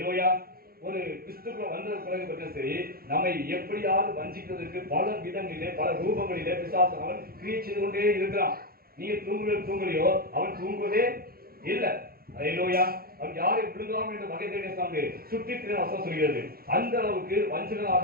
ஒரு கிறிஸ்துக்குள்ள வந்த பிறகு பற்றி சரி, நம்மை எப்படியாவது வஞ்சிக்கிறதுக்கு பல விதங்களிலே பல ரூபங்களிலே பிசாசு அவன் கிரியை செய்து கொண்டே இருக்கிறான். நீங்க தூங்கலையோ அவன் தூங்குவதே இல்லை. ஹalleluya. அவன் யாரை விழுகாமல் என்ற வகை தேடிய சாமி சுற்றி வசனம் சொல்கிறது. அந்த அளவுக்கு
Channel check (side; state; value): left; late; 0.44 ms